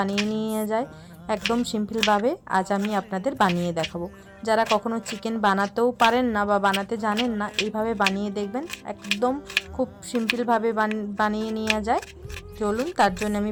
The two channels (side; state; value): both; identical; correlation 1.00